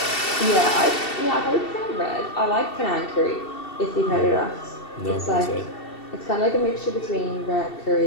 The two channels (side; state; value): right; late; 2.7 ms